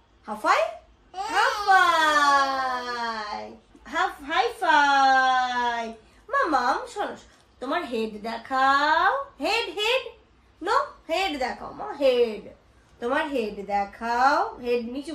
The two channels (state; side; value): identical; both; correlation 1.00